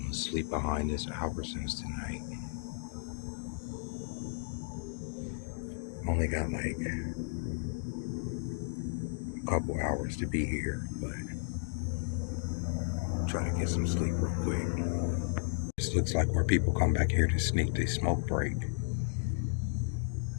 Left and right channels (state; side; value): silent; right; digital silence